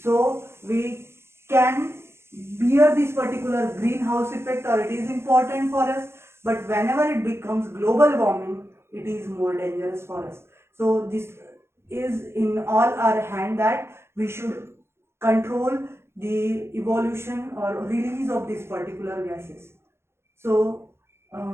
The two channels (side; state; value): left; late; 0.12 ms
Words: So we can bear this particular greenhouse effect, or it is important for us, but whenever it becomes global warming, it is more dangerous for us. So this is in all our hand, that we should control the evolution or release of these particular gases. So